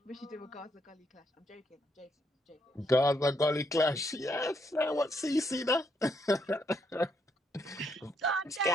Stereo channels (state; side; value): normal; both; correlation 0.75